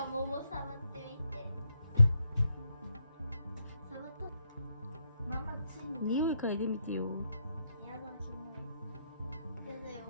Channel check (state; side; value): inverted; both; correlation -0.79